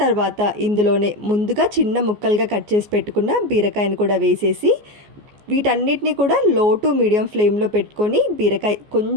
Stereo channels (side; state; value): left; late; 14 ms